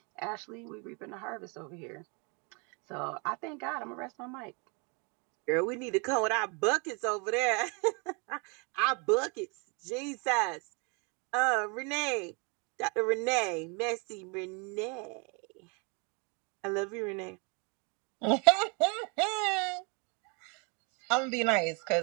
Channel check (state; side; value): quieter; left; 33.4 dB